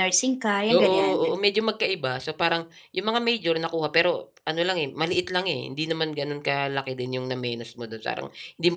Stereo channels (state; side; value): identical; both; correlation 1.00